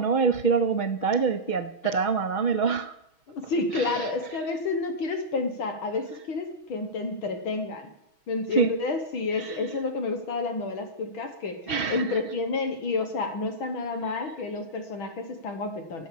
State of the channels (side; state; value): right; late; 6.3 ms